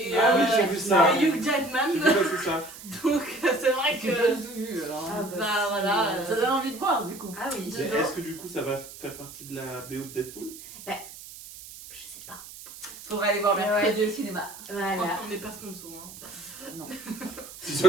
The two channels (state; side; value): noise; right; hiss, 15 dB below the sound